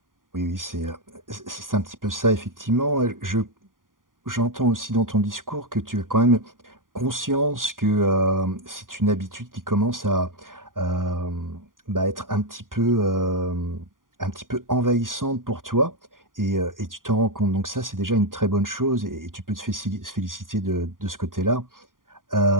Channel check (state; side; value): late; left; 0.90 ms